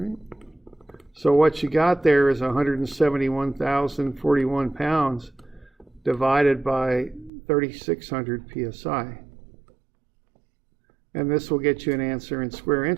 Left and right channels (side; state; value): left; drops out; at 7.3 s